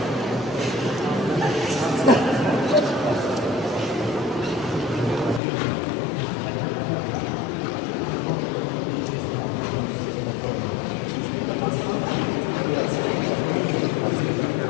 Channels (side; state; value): right; drops out; at 5.4 s